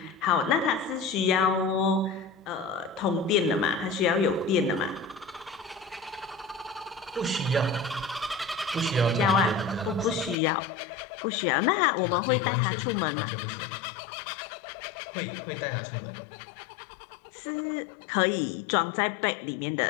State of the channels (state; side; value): drops out; right; at 10.4 s